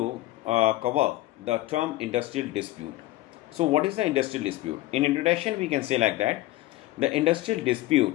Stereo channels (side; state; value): right; quieter; 16.9 dB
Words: cover the term industrial dispute. So what is the industrial dispute? In introduction we can say like that the industrial